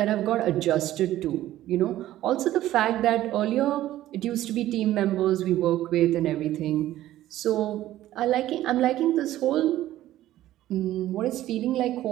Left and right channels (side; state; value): left; quieter; 14.1 dB